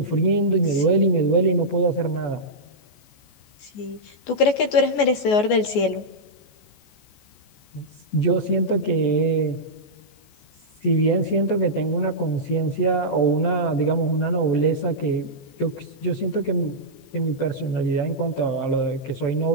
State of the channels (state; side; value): late; right; 14 ms